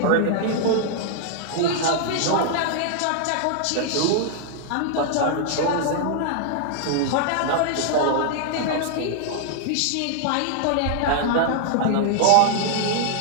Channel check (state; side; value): different; both; correlation -0.01